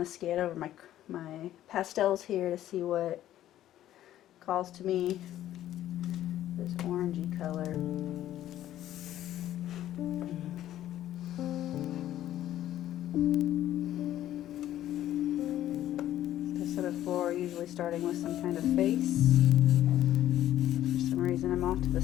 to scan over my pastels here to see what calls to me. This orangey color. As I said before, usually starting with some kind of face. For some reason I'm off to the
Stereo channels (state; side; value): quieter; right; 12.7 dB